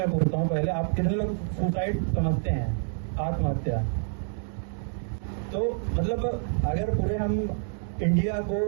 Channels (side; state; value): left; silent; digital silence